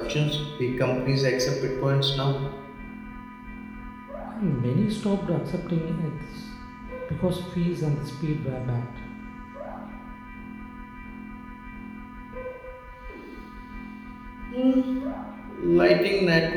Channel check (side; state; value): both; identical; correlation 1.00